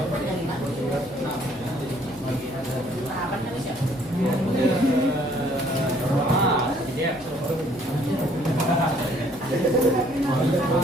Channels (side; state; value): left; noise; hum, 25 dB below the sound